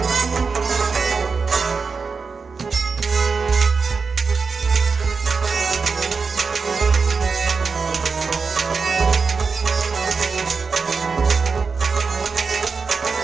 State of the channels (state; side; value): quieter; left; 4.9 dB